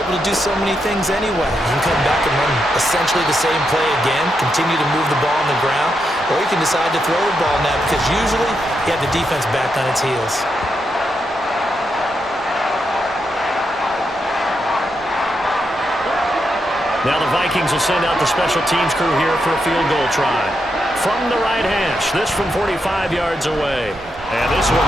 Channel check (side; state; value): both; normal; correlation 0.83